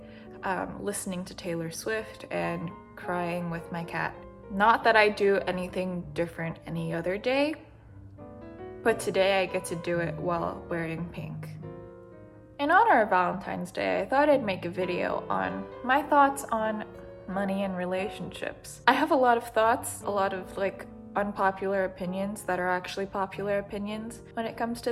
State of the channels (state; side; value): identical; both; correlation 1.00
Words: listening to Taylor Swift and crying with my cat. Not that I do anything different any other day, but today I get to do it while wearing pink. In honor of Valentine's Day, I thought I'd make a video on my thoughts on money and relationships. I have a lot of thoughts, a lot of unpopular opinions that are actually popular opinions when it comes to